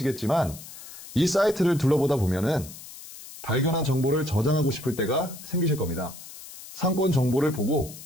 이 사이트를 둘러보다 보면은 발견한 정보를 저장하고 싶을 때가 생기실 겁니다. 상권 정보를 보고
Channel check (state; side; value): noise; left; hiss, 15 dB below the sound